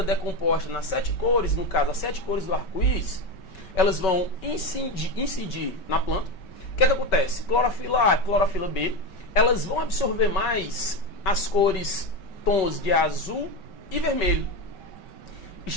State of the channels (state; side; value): late; right; 5.3 ms